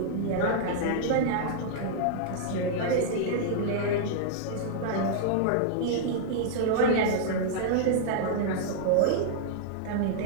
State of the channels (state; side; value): different; both; correlation -0.01